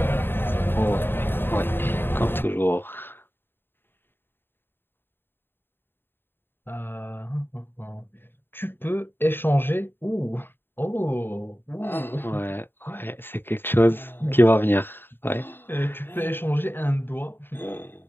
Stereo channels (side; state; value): right; late; 0.10 ms